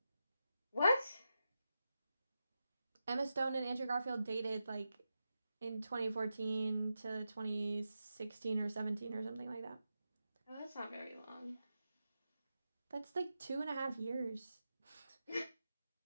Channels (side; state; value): both; inverted; correlation -0.88